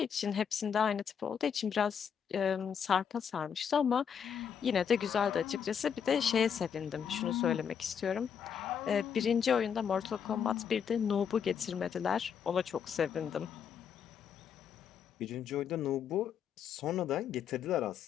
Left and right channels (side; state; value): right; quieter; 7.6 dB